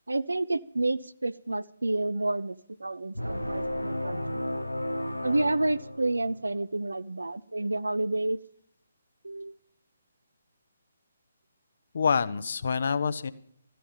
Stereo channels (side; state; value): both; inverted; correlation -0.93